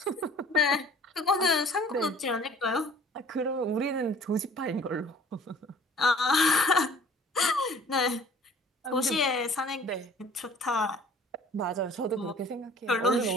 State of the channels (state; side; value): normal; both; correlation 0.51